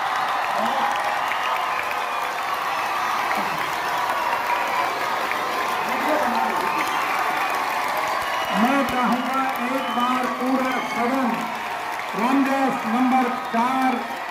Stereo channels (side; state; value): both; identical; correlation 1.00